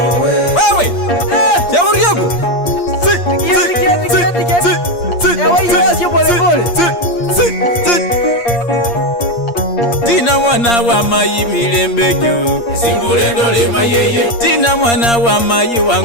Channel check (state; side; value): late; right; 8.5 ms